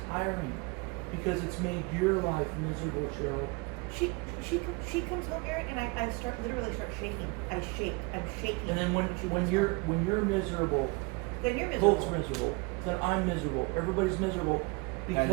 tiring because it's made your life miserable, Cheryl. She comes home, Eric, and I literally start shaking. I shake. I'm shaking. And then she when comes you're home. miserable, Then you're miserable. Colt's miserable, then I'm miserable, everybody's miserable because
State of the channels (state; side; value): quieter; left; 28.4 dB